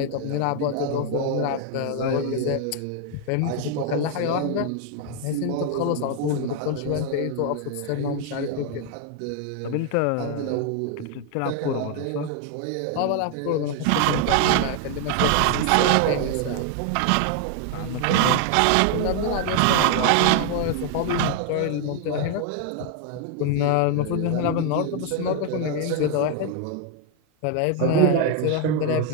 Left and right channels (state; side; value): different; both; correlation 0.01